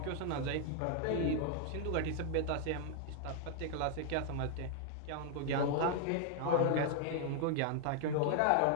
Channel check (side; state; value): both; different; correlation 0.00